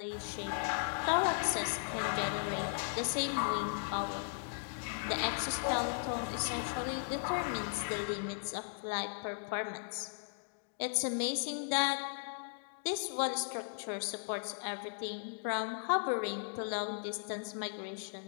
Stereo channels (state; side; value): silent; right; digital silence